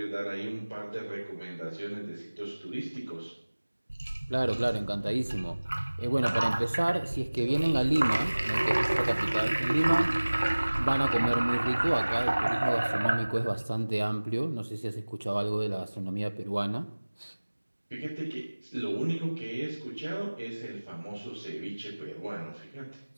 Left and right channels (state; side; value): inverted; both; correlation -1.00